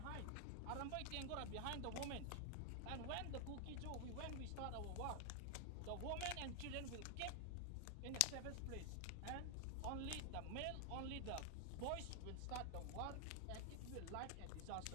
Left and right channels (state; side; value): different; both; correlation 0.00